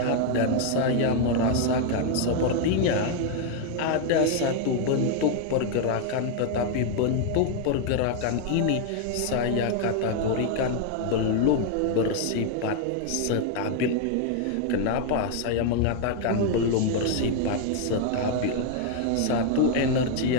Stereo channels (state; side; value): different; both; correlation 0.00